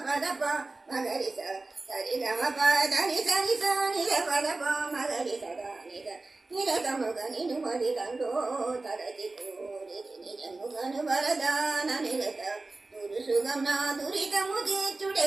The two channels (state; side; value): quieter; left; 3.3 dB